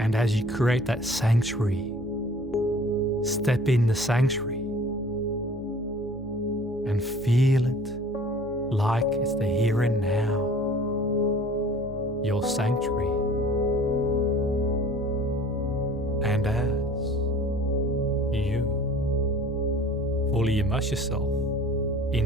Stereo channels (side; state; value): both; normal; correlation 0.48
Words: as you create that sanctuary, step in the sanctuary and feel it like it's the here and now, your sanctuary. And as you fully immerse yourself